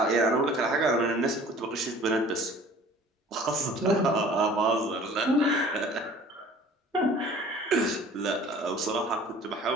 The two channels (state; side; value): normal; both; correlation 0.48